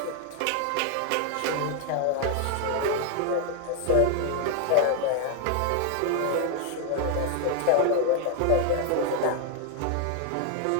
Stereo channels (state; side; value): different; both; correlation 0.00